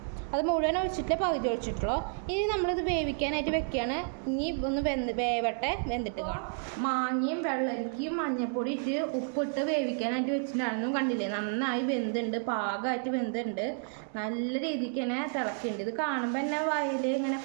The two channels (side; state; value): left; silent; 57 dB below the other